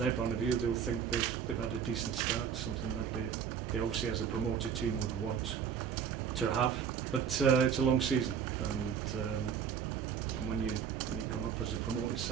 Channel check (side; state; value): left; quieter; 7.6 dB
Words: point of view, they'll think they've had a decent start, something that they obviously as a promoted team would want to have. But it's a long season, and when you come up as a promoted